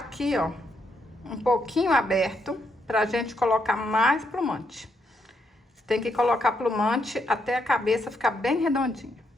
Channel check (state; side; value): normal; both; correlation 0.78